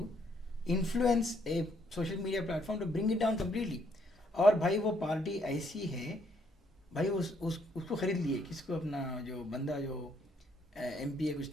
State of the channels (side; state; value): both; normal; correlation 0.70